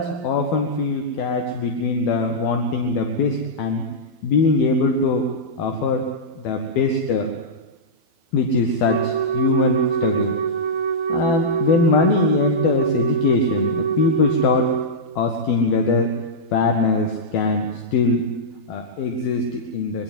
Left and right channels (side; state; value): right; late; 12 ms